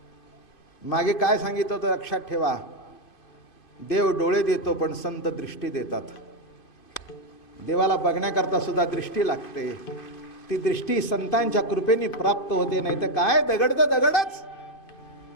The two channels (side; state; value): right; late; 2.5 ms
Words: मागे काय सांगितलं होतं लक्षात ठेवा. देव डोळे देतो पण संत दृष्टी देतात. देवाला बघण्याकरता सुद्धा दृष्टी लागते. ती दृष्टी संतांच्या कृपेने प्राप्त होते. नाही तर काय, दगड तर दगडच